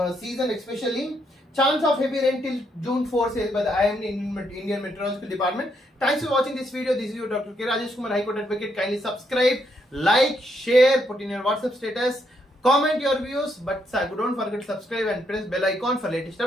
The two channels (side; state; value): both; normal; correlation 0.76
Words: season, especially chance of heavy rain till June 4 says by the IMD Indian Meteorological Department. Thanks for watching this video. This is your Dr. K. Rajesh Kumar, High Court Advocate. Kindly subscribe, like, share, put in your WhatsApp status, comment your views, but don't forget to subscribe and press bell icon for latest